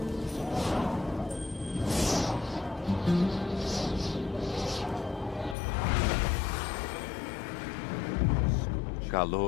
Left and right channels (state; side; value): drops out; right; at 5.6 s